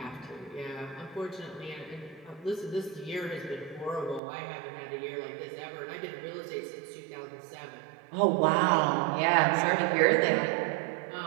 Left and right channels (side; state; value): left; drops out; at 4.2 s